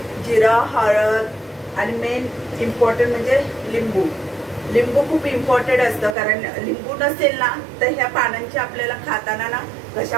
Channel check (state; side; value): drops out; left; at 6.2 s